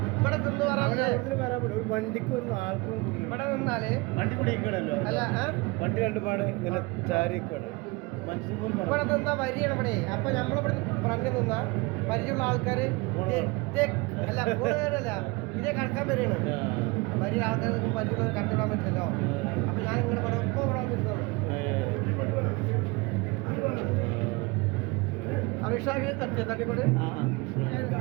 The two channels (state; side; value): quieter; left; 25.4 dB